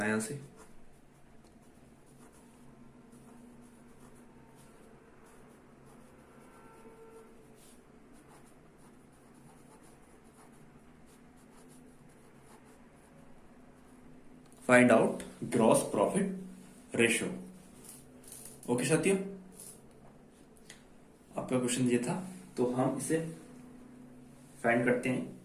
है यहां से। Find out gross profit ratio, okay साथियों। आपका क्वेश्चन ये था, तो हम इसे फाइंड करते हैं।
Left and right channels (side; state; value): both; identical; correlation 1.00